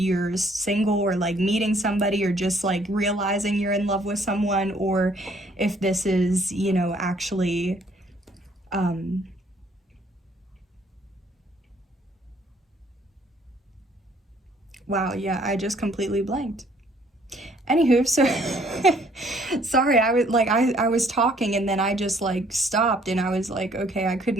single or like meeting somebody or just like realizing you're in love with someone, or if this is, you know, actually wow, yeah, I just completely blanked. Anywho, so sorry, I was talking and then I just like stopped and I was like, okay, I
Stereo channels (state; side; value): normal; both; correlation 0.63